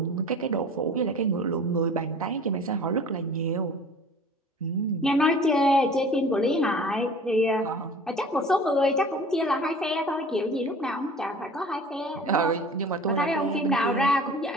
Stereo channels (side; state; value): both; normal; correlation 0.44